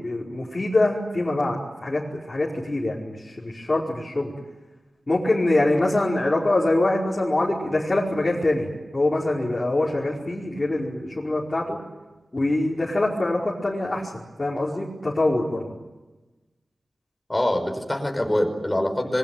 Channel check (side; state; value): both; normal; correlation 0.97